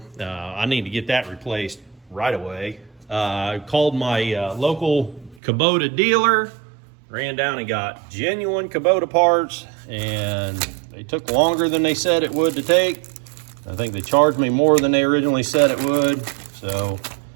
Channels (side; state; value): left; drops out; at 5.4 s